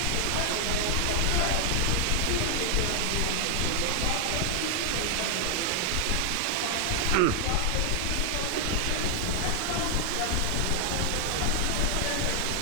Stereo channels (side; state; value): both; different; correlation 0.00